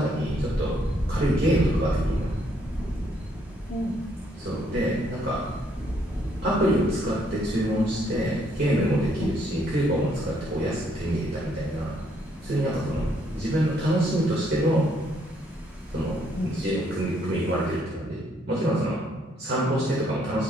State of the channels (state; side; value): normal; both; correlation 0.70